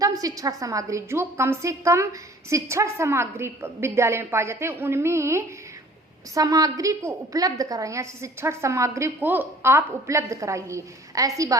शिक्षण सामग्री, जो कम से कम शिक्षण सामग्री विद्यालय में पाए जाते हैं, उनमें सामग्री को उपलब्ध कराइए, शिक्षण सामग्री को आप उपलब्ध कराइए, ऐसी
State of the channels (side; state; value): both; normal; correlation 0.51